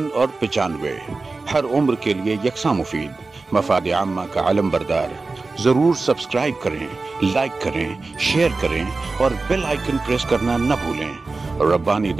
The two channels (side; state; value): left; quieter; 3.7 dB